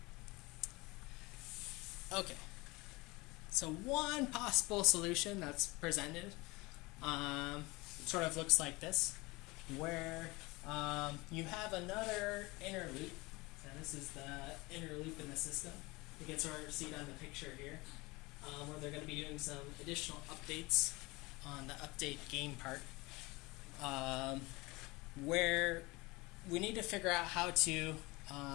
Okay, so one possible solution that's presented sort of looks like this, where you have another inner loop. So this is the inner loop in the system. You can sort of see it on the picture here, where they're going to be doing some additional updates on the update game part, where we need to figure out how to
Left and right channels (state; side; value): quieter; right; 23.4 dB